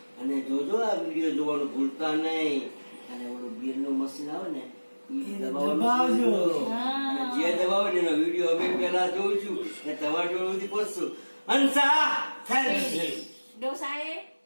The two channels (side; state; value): both; inverted; correlation -1.00